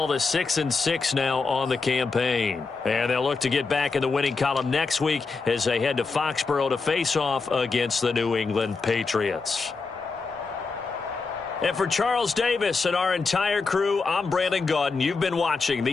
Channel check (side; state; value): right; quieter; 4.4 dB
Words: to 6-6 now on the campaign. And they'll look to get back in the winning column next week as they head to Foxborough to face off against the New England Patriots. And for Charles Davis and our entire crew, I'm Brandon Gaudin. You've been watching